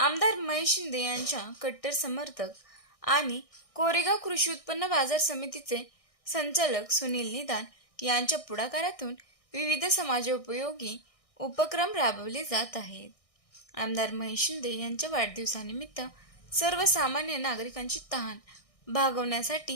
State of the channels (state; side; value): late; right; 1.6 ms